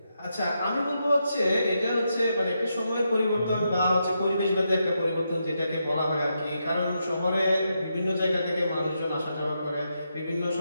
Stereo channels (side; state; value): both; inverted; correlation -0.83